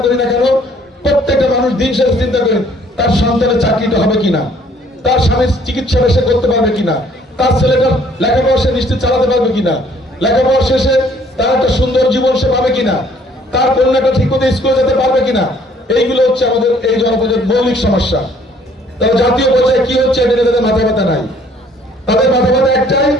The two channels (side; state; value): both; normal; correlation 0.60